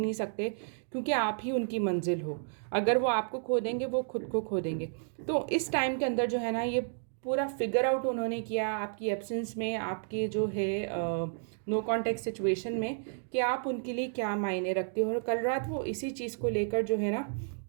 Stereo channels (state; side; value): silent; left; digital silence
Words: सकते, क्योंकि आप ही उनकी मंजिल हो। अगर वो आपको खो देंगे, वो खुद को खो देंगे। तो इस टाइम के अंदर जो है ना ये पूरा फिगर आउट उन्होंने किया आपकी एब्सेंस में, आपके जो है नो कॉन्टेक्ट सिचुएशन में, कि आप उनके लिए क्या मायने रखते हो। और कल रात वो इसी चीज़ को लेकर जो है ना